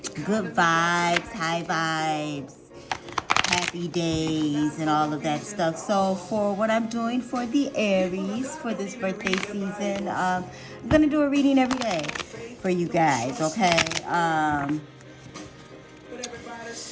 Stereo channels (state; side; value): identical; both; correlation 1.00